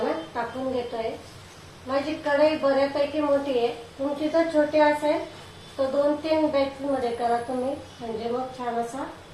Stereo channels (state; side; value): identical; both; correlation 1.00